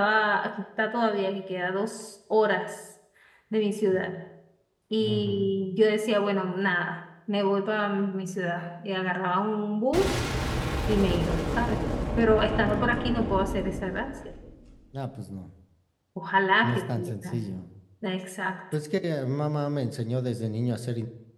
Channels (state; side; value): identical; both; correlation 1.00